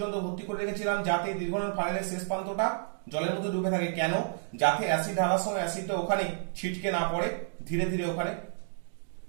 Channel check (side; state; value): left; silent; digital silence